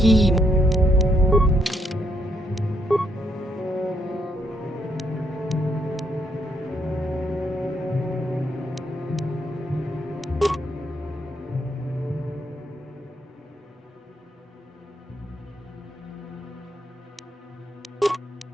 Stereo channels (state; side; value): normal; both; correlation 0.74